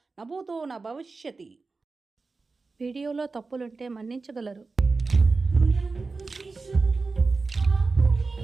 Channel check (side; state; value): left; quieter; 4.0 dB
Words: నభూతో న భవిష్యతి. వీడియోలో తప్పులుంటే మన్నించగలరు.